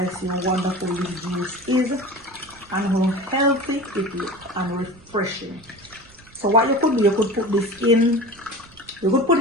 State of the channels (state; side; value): noise; right; rumble, 26 dB below the sound